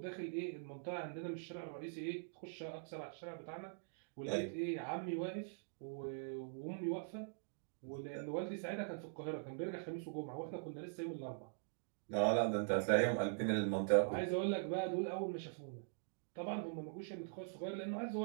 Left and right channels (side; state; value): left; silent; digital silence